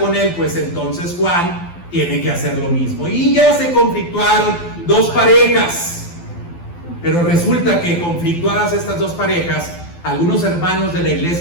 él, pues entonces Juan tiene que hacer lo mismo. Y ya se conflictuaron dos parejas. Pero resulta que conflictuadas estas dos parejas, algunos hermanos de la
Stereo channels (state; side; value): late; right; 12 ms